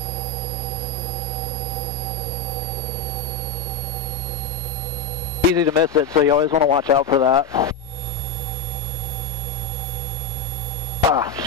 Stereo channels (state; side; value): quieter; right; 3.3 dB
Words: Easy to miss it, so you always want to watch out for that. Ah,